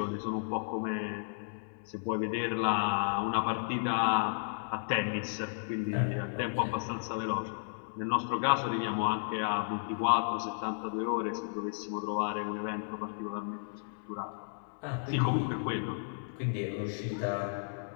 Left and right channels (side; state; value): right; silent; 56 dB below the other